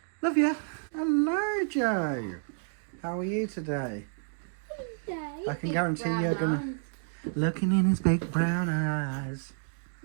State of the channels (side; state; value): left; silent; digital silence